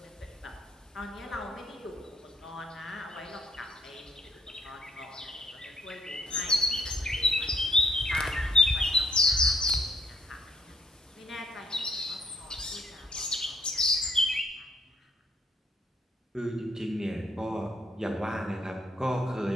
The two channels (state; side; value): normal; both; correlation 0.67